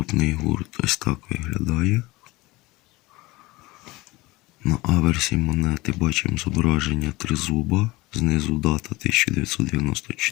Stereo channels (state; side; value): quieter; right; 21.3 dB